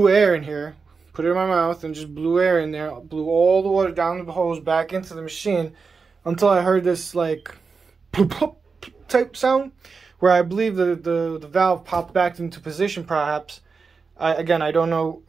air in here, put it in my mouth, and just blew air in there, blew all the water down the hose back into the machine until I heard this like plop, plop type sound, where I believe the valve popped back into position perhaps. Again, I don't know,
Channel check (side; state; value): left; quieter; 4.9 dB